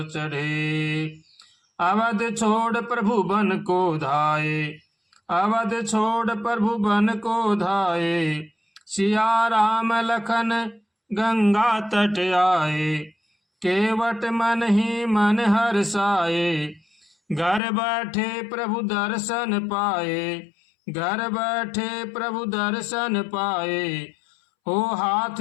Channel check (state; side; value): drops out; right; at 17.6 s